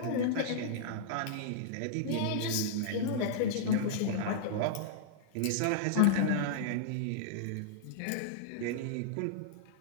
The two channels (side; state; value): both; different; correlation -0.02